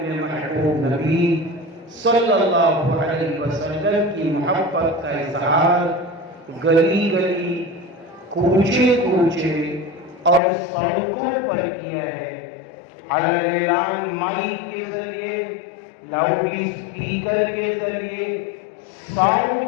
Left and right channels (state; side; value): drops out; right; at 10.4 s